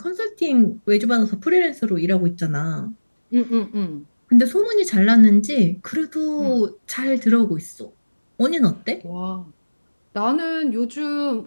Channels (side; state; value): both; inverted; correlation -1.00